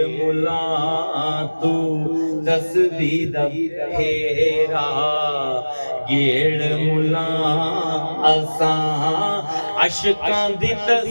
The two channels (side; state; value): both; inverted; correlation -1.00